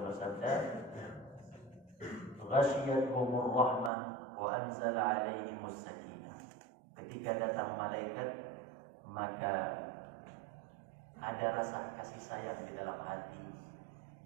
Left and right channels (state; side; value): drops out; left; at 3.9 s